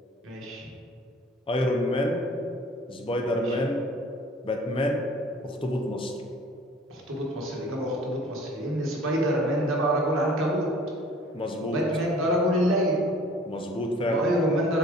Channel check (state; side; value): normal; both; correlation 0.50